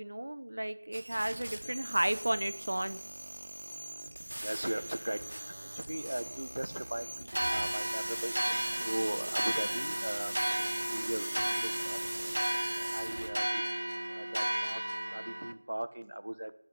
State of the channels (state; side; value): inverted; both; correlation -1.00